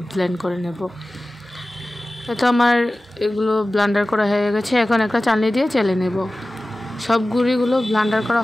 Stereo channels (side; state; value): both; normal; correlation 0.96